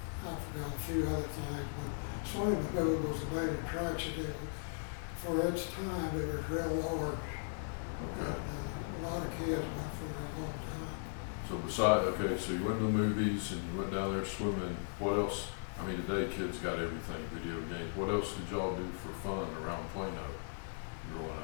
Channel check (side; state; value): right; silent; digital silence